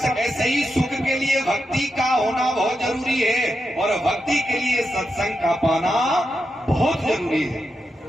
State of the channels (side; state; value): both; normal; correlation 0.87